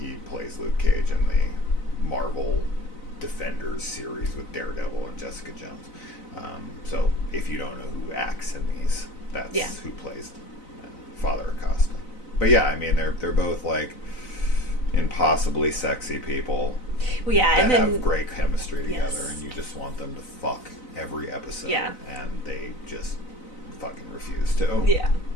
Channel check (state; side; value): late; right; 4.0 ms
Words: plays Luke Cage in the Marvel Defenders series with Daredevil and Jessica Jones. So if you don't know who acts in these, that's who plays Father Acosta. But they're both like impossibly sexy people that have great chemistry together, and you just want them to fuck every episode, and they just fucking refuse to.